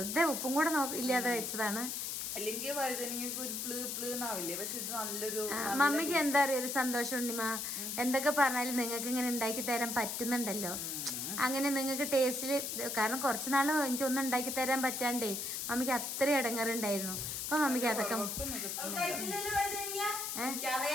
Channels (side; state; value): left; noise; hiss, 3 dB below the sound